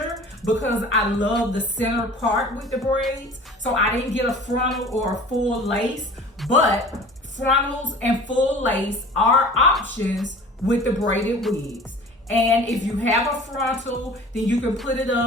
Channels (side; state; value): both; normal; correlation 0.43